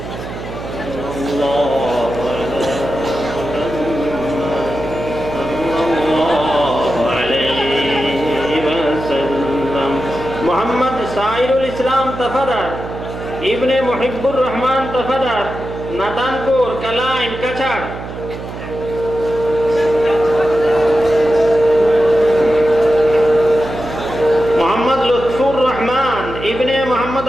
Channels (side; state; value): right; noise; hum, 10 dB below the sound